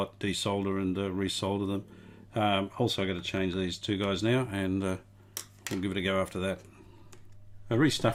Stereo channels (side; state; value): both; identical; correlation 1.00